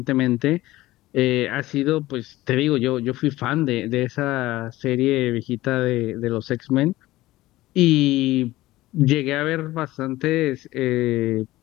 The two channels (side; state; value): right; quieter; 17.3 dB